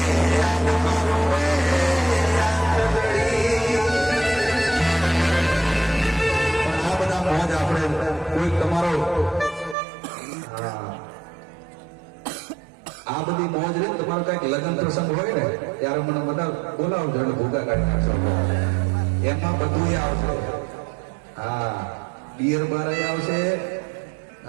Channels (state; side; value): drops out; left; at 9.8 s